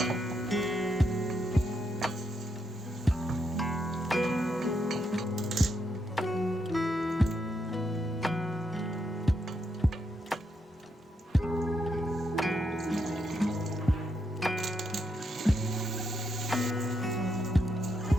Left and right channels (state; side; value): normal; both; correlation 0.80